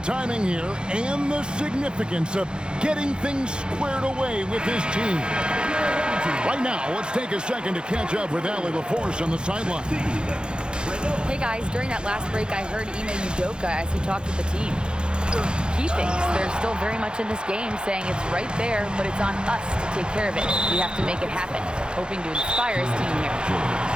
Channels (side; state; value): left; late; 0.050 ms